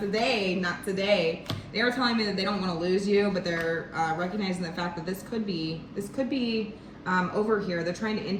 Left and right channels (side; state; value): both; identical; correlation 1.00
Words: not today. They are telling me that they don't want to lose you, but they're recognizing the fact that this could be over here. They're trying to